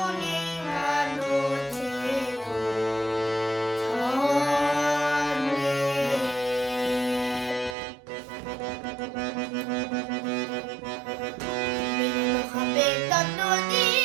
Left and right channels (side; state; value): left; drops out; at 7.8 s